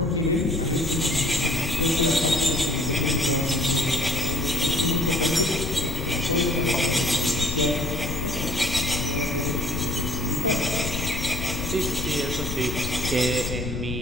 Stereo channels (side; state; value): left; noise; rumble, 4 dB below the sound